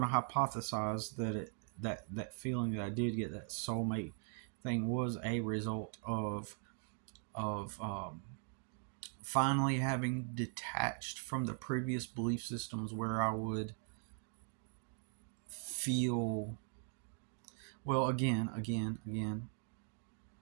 to hypothesize that that feeling that I did get, that soulmate thing, was a result of finally having detached from the previous belief systems where I would feel, well, again,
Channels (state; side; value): silent; left; 51 dB below the other